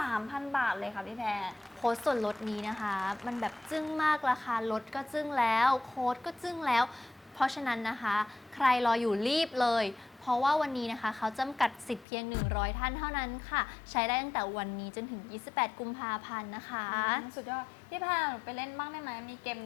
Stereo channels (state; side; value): drops out; right; at 12.1 s